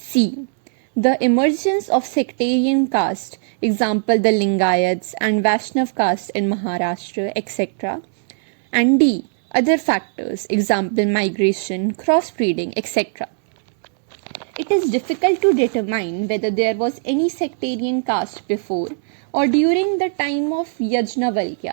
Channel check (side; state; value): left; silent; digital silence